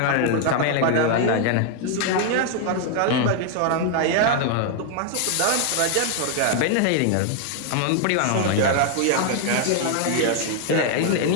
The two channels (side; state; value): both; different; correlation 0.00